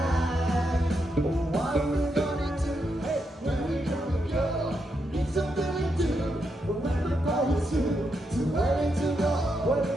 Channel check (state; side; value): normal; both; correlation 0.82